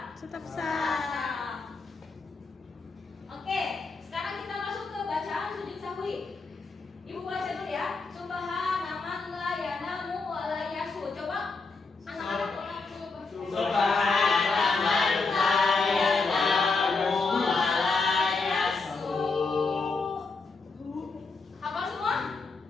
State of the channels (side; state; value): right; quieter; 4.1 dB